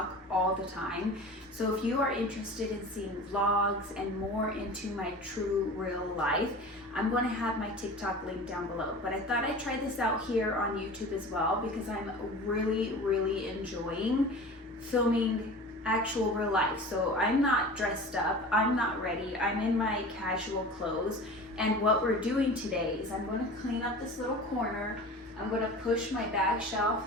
all the time. So if you are interested in seeing vlogs and more into my true real life, I'm going to have my TikTok link down below. But I thought I'd try this out here on YouTube as well because I'm really enjoying filming actual real life. So I'm not dressed up, I'm not ready, I'm in my casual clothes, and what we're doing today is I'm going to clean up this little corner. I'm going to push my bag shelf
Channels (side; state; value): both; normal; correlation 0.37